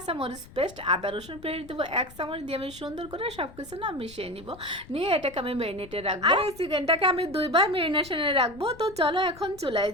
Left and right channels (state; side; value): noise; left; rumble, 19 dB below the sound